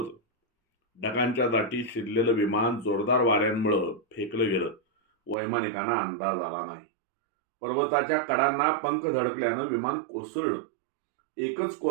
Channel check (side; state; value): left; drops out; at 5.4 s